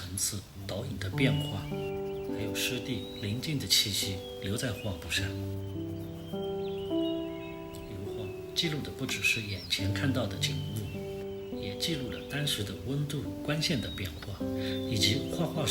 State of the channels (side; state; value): both; identical; correlation 1.00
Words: 次、倒影的变化，还有湿地宁静的气息留在画布上。油画记录的不只是眼前看到的景物，也记录了当时的温度、光线的变化，以及画画